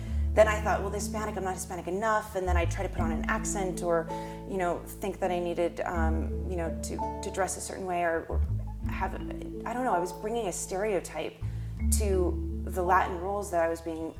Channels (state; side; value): identical; both; correlation 1.00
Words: then I thought, well, the Hispanic, I'm not Hispanic enough, and then I'd try to put on an accent, or, you know, think that I needed, you know, to dress a certain way, or have, I don't know, I was bringing a stereotype to the Latin roles that I was being